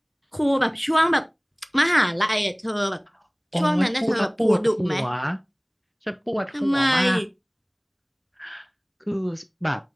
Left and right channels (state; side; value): identical; both; correlation 1.00